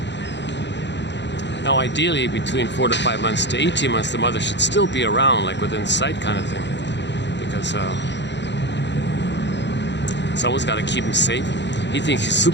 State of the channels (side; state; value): right; late; 0.52 ms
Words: Now, ideally, between 4 to 5 months to 18 months, the mother should still be around, like within sight kind of thing, because someone's got to keep him safe. He thinks he's